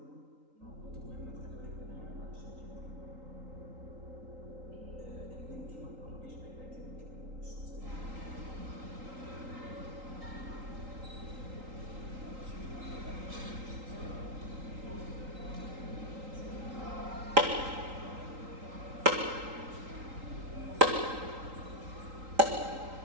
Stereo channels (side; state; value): left; late; 3.8 ms